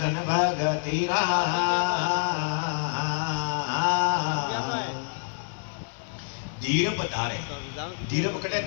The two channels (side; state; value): right; silent; 60 dB below the other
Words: भगतीरा। धीरप धारे, धीरप कटे